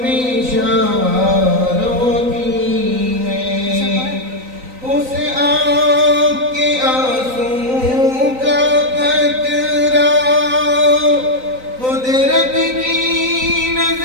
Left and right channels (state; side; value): late; left; 3.9 ms